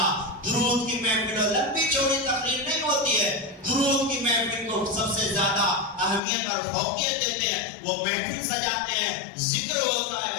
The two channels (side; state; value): right; drops out; at 6.2 s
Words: درود کی محفل، لمبی چوڑی تقریر نہیں ہوتی ہے، درود کی محفل کو سب سے زیادہ اہمیت اور فوقیت دیتے ہیں۔ وہ محفل سجاتے ہیں، ذکر ہوتا